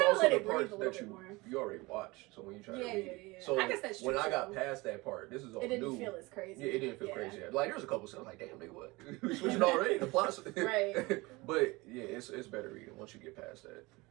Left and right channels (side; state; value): left; quieter; 23.1 dB